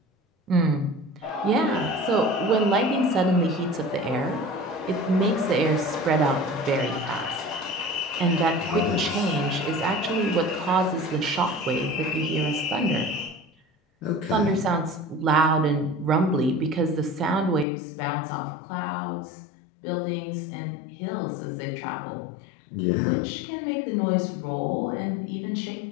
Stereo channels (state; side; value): drops out; right; at 17.7 s